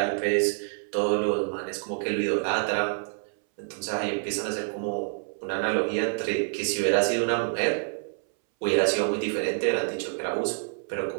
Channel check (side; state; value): left; silent; 60 dB below the other